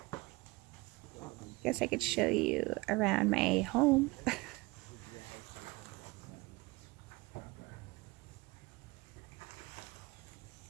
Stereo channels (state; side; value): quieter; left; 23.3 dB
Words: Guess I could show you around my home.